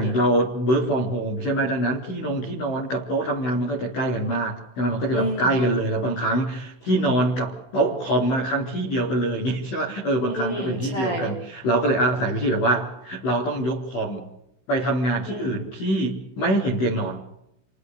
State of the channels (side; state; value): right; late; 16 ms